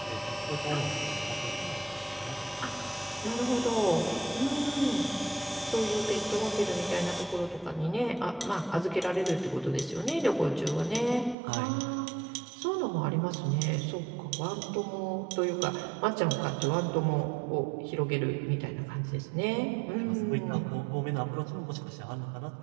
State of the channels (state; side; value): drops out; left; at 11.4 s